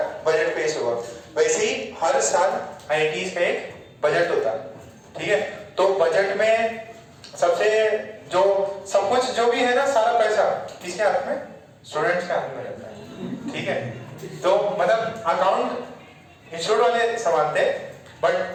बजट पेश होगा। वैसे ही हर साल आईआईटीज का एक बजट होता है, ठीक है? तो बजट में सबसे जो सब कुछ जो भी है ना, सारा पैसा किसके हाथ में? स्टूडेंट्स के हाथ में रहता है, ठीक है? तो मतलब अकाउंट इंस्टीट्यूट वाले संभालते हैं, बट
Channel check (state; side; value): identical; both; correlation 1.00